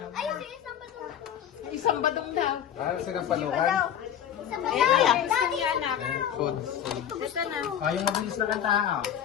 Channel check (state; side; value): quieter; right; 9.6 dB